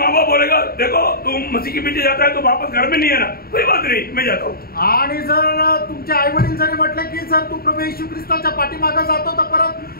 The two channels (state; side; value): late; right; 0.44 ms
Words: बाप बोलेगा देखो तुम मसीह के पीछे जाता है तो वापस घर में नहीं है ना, कोई बात नहीं मैं जाता हूँ। आणि जर तुमचे आई वडील जरी म्हटले की जर तू प्रभू येशू ख्रिस्ताच्या पाठीमागे जातो तर परत